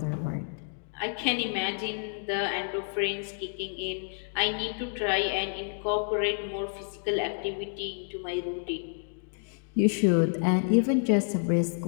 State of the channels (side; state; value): right; silent; digital silence